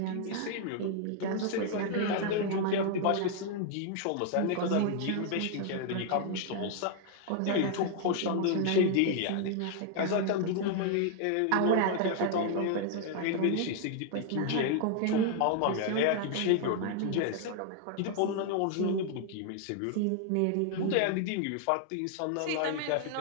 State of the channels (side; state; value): both; different; correlation 0.00